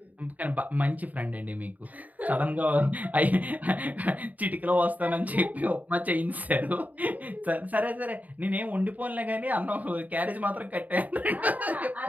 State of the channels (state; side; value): late; left; 0.076 ms